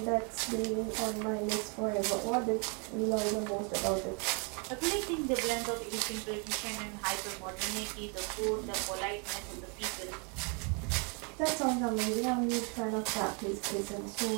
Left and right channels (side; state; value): left; quieter; 35.7 dB